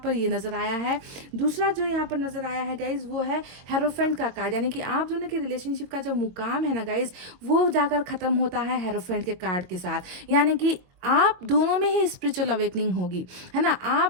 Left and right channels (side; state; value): left; late; 23 ms